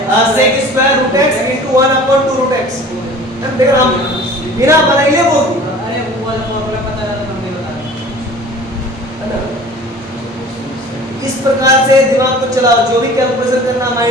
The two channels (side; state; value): both; normal; correlation 0.44